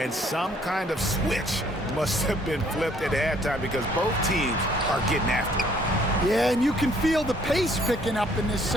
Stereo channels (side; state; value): both; normal; correlation 0.62